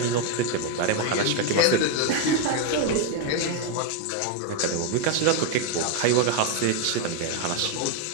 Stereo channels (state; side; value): different; both; correlation 0.01